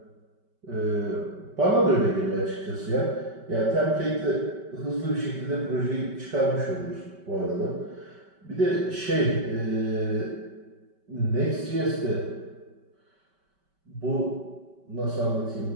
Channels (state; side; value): late; left; 5.2 ms